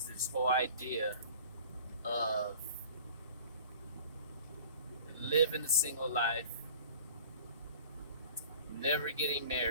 this whole idea of living a single life, never getting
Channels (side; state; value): both; inverted; correlation -0.45